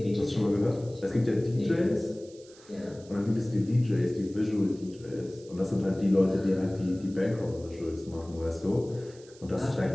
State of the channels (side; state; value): right; noise; hiss, 24 dB below the sound